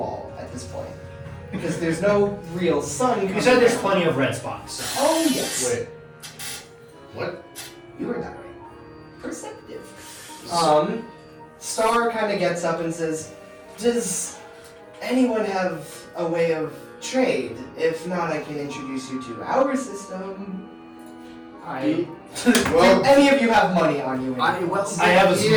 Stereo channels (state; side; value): identical; both; correlation 1.00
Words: wall at this point. Because there's no real sun coming You said there's down. plenty of red spots. So. Oh, yes. Wait. What? You heard that right. Perceptive. Star kind of gets up and says, does anyone have a way of trade? If not, I can introduce you to our system. Well, Any of you have money on you? I I have a small